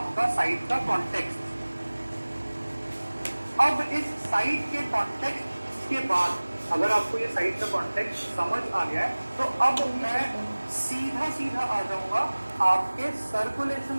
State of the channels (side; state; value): both; inverted; correlation -1.00